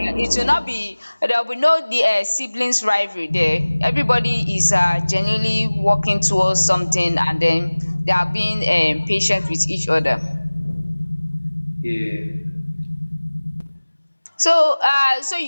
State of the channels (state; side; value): inverted; both; correlation -1.00